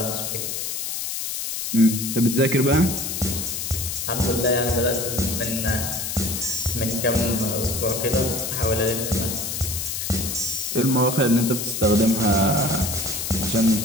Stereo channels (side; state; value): left; noise; hiss, 4 dB below the sound